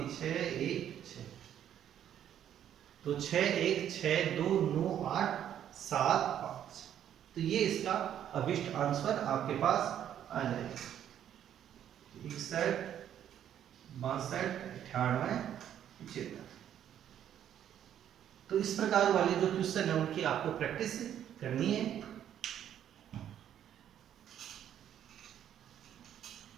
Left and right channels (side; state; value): left; quieter; 10.2 dB